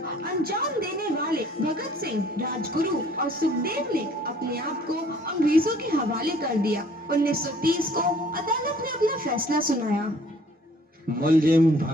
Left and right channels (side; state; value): both; normal; correlation 0.56